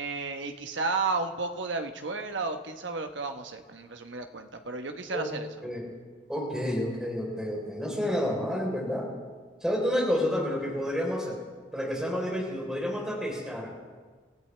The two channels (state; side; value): normal; both; correlation 0.50